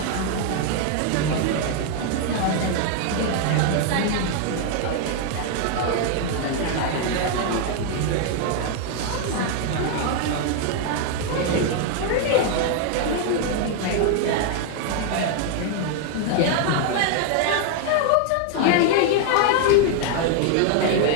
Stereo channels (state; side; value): different; both; correlation 0.00